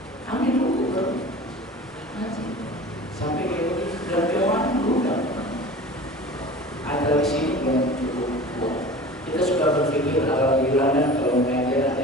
Ambil buku baru ngaji sampai kayak begitu. Dan jamaah dulu kan ada di sini belum cukup kuat. Kita sudah berpikir alhamdulillah dan kalau mengajar ada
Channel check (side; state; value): both; normal; correlation 0.39